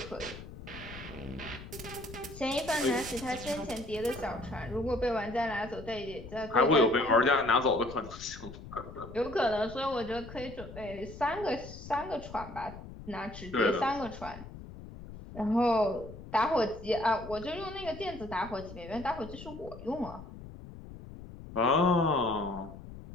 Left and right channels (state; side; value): noise; left; rumble, 14 dB below the sound